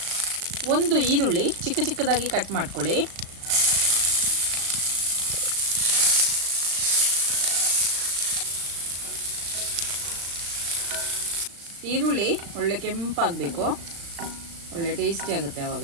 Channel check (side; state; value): left; late; 36 ms